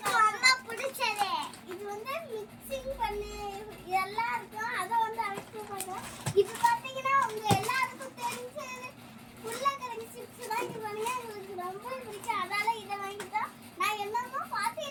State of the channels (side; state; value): both; identical; correlation 1.00